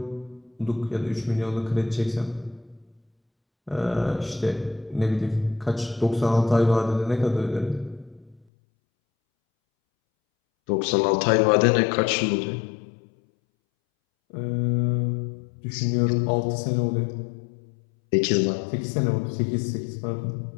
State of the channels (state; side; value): drops out; right; at 8.4 s